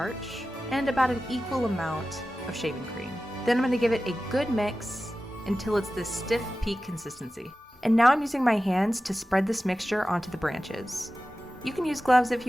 and about an equal amount of shaving cream. Then I'm going to give it a good mix until it's this stiff peak consistency. And now I'm using my hands to spread this mixture onto the branches. You can use gloves if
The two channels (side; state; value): both; normal; correlation 0.95